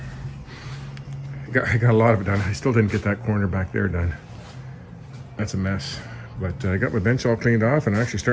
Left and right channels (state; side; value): identical; both; correlation 1.00